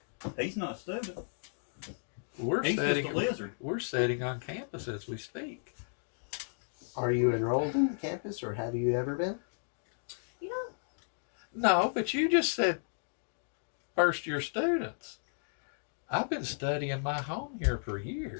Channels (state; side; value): silent; right; digital silence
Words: He's not a student. We're He's just a sitting. lizard. We're sitting on campus as we speak. Are you enrolled in the campus, or have you ever been? You know, No, but you just said first year students. I've been studying my home here for